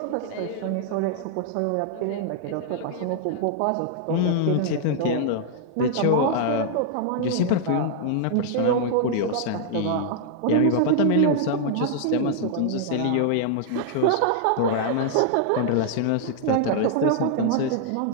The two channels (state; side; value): different; both; correlation -0.01